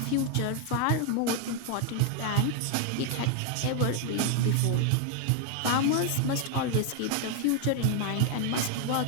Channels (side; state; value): both; different; correlation 0.00